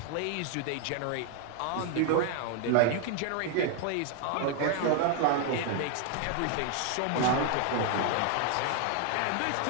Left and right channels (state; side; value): different; both; correlation 0.00